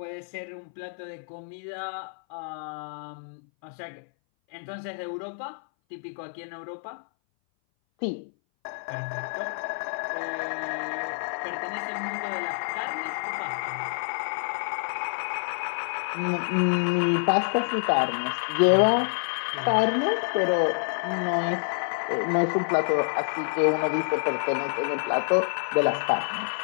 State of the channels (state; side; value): silent; right; 58 dB below the other